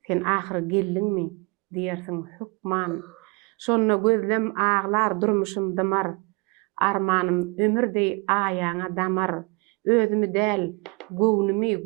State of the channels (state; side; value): quieter; left; 29.8 dB